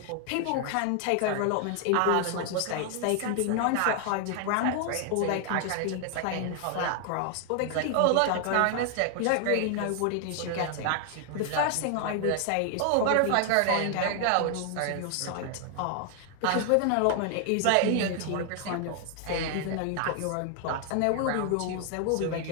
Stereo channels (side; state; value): both; different; correlation 0.00